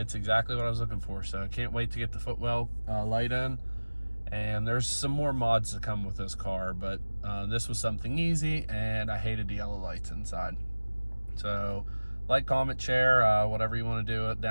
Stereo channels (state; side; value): inverted; both; correlation -1.00